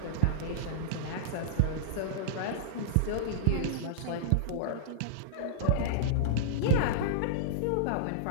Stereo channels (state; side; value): different; both; correlation -0.03